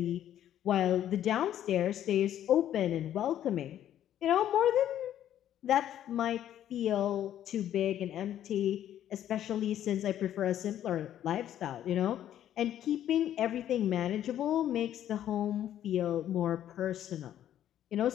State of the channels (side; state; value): right; quieter; 11.2 dB